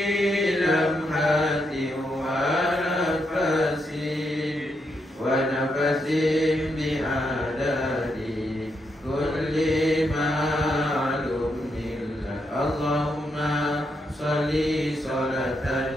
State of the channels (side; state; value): both; normal; correlation 0.81